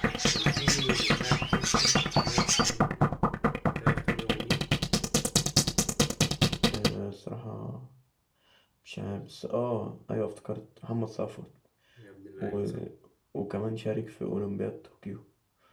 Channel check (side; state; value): both; identical; correlation 1.00